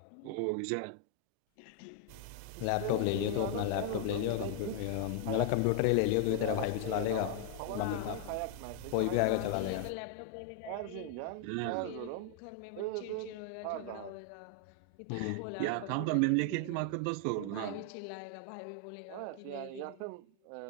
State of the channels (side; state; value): both; different; correlation 0.00